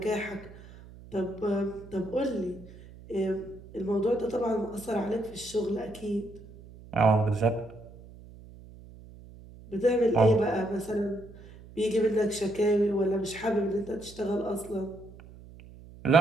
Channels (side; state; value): right; noise; hum, 19 dB below the sound